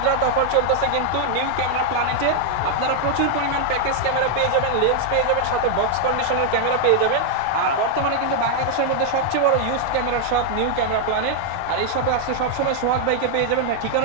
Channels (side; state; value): both; different; correlation 0.00